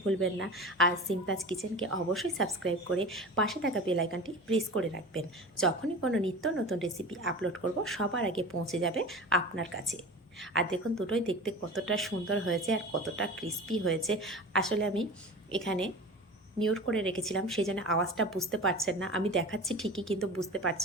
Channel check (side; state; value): both; normal; correlation 0.34